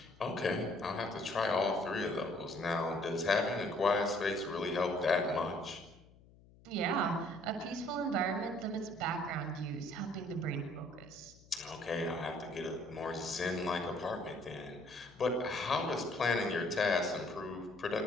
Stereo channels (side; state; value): left; noise; hum, 25 dB below the sound